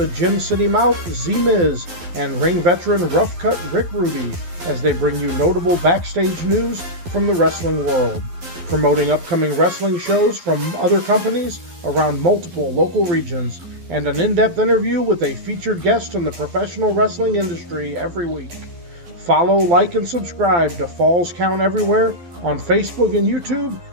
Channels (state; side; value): late; left; 12 ms